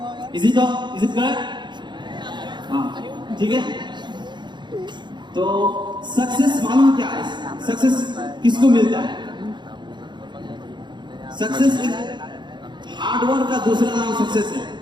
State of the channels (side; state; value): left; late; 0.22 ms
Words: Is it correct? हाँ, ठीक है। तो सक्सेस मालूम क्या है? सक्सेस किसको मिलता है? सक्सेस एक हार्डवर्क का दूसरा नाम सक्सेस है।